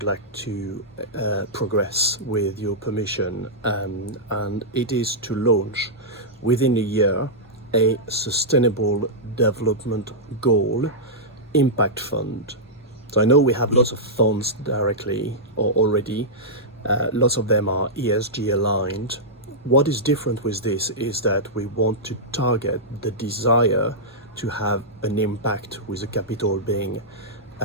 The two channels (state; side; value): normal; both; correlation -0.11